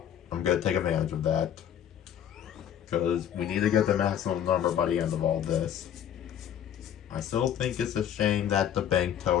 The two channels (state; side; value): quieter; right; 9.7 dB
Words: gonna take advantage of that. Because we need to get the maximum number by the end of all this. I still think it's a shame that the Bank